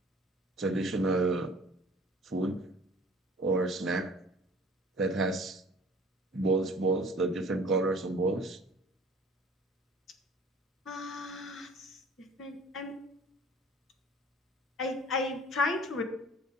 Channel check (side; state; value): both; normal; correlation 0.48